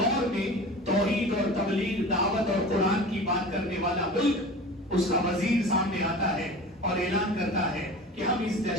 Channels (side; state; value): both; normal; correlation 0.36